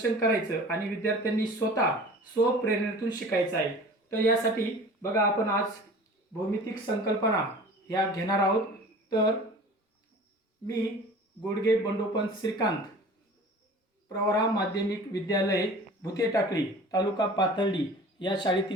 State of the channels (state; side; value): normal; both; correlation 0.42